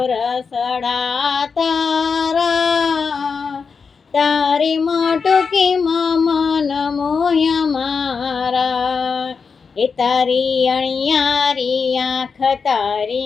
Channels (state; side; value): quieter; right; 5.4 dB